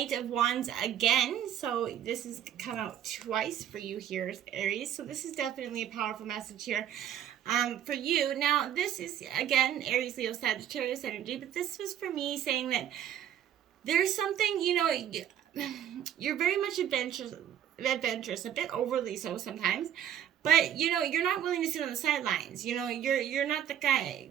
of Wands again. So this has come out twice for you here, Aries. So this is definitely a powerful message here for you. Now, this is, again, Aries, Leo, Sagittarius energy. But this was for me saying that there's something, you're very much adventurous, a bit overly so sometimes, but you're not willing to sit on the sidelines. You're not the guy.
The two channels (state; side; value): quieter; left; 10.1 dB